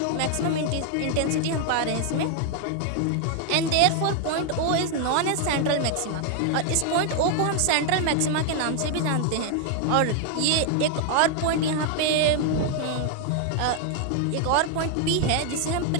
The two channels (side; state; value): both; different; correlation 0.00